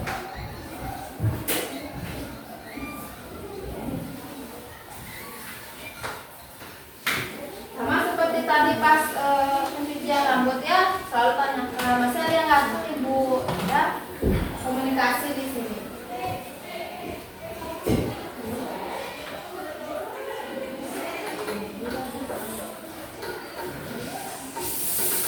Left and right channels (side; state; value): both; identical; correlation 1.00